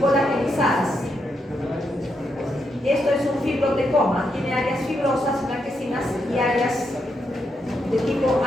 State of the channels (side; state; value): both; normal; correlation 0.81